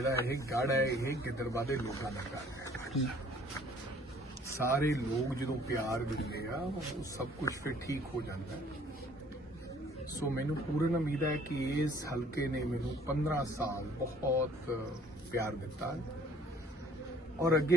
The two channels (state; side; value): normal; both; correlation 0.57